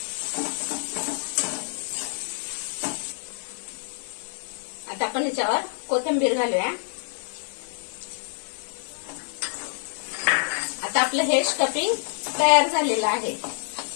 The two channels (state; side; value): silent; right; digital silence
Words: आता आपण ह्याच्यावर कोथिंबीर घालूया. आता आपलं हे स्टफिंग तयार झालेलं आहे.